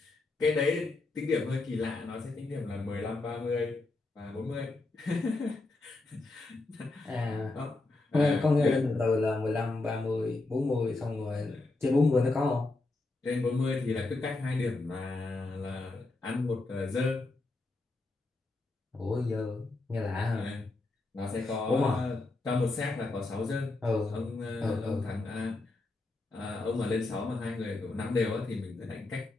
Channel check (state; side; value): quieter; right; 3.2 dB